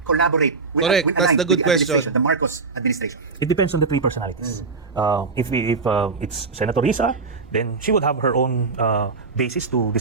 collaborate with, Correct. That's the good question. The Marcos administration? It depends on the three personalities. If it's Senator Risa, then she would have her own basis to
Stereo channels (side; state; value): left; quieter; 4.4 dB